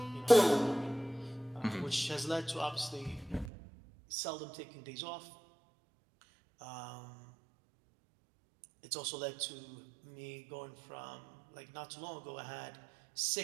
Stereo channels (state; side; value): drops out; left; at 3.5 s